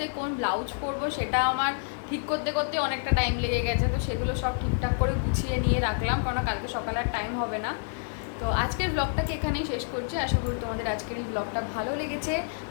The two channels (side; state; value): right; silent; digital silence